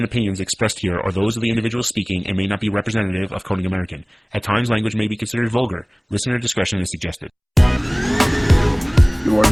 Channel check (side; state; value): both; identical; correlation 1.00